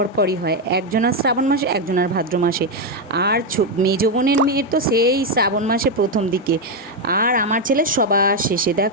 হয়, একজনের শ্রাবণ মাসে একজনের ভাদ্র মাসে, আর মেজো বোনের মেয়ের তো সেই শ্রাবণ মাসে প্রথম দিকে, আর আমার ছেলে সবার শেষে।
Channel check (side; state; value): both; normal; correlation 0.04